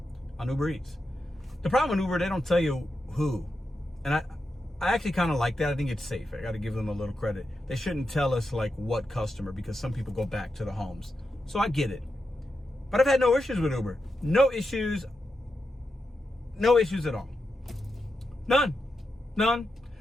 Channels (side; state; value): both; normal; correlation 0.87